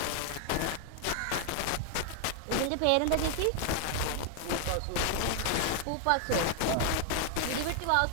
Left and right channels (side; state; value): both; different; correlation 0.00